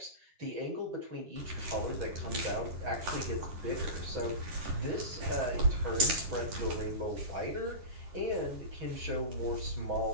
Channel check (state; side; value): late; left; 7.4 ms